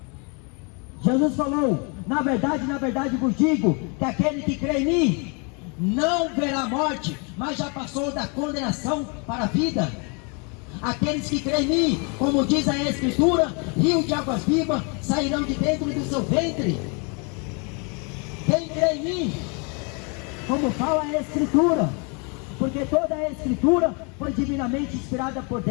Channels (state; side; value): quieter; right; 34.3 dB